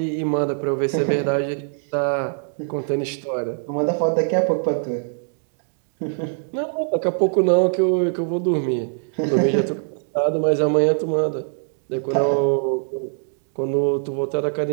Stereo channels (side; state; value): left; silent; 64 dB below the other